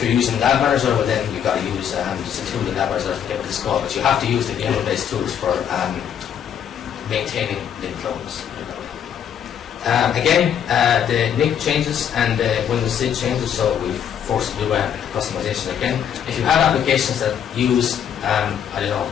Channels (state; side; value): quieter; right; 8.9 dB